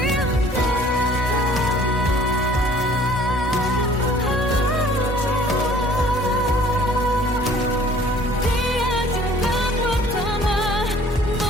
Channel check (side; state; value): both; normal; correlation 0.54